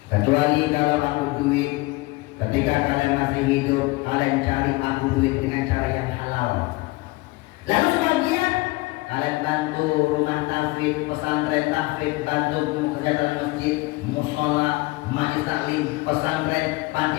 Kecuali kalau aku duit, ketika kalian masih hidup, kalian cari aku duit dengan cara yang halal. Lalu sebagian kalian bantu rumah tahfidz, pesantren tahfidz, bantu kerja dalam masjid, musola, majlis taklim, pesantren, panti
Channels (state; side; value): quieter; right; 21.9 dB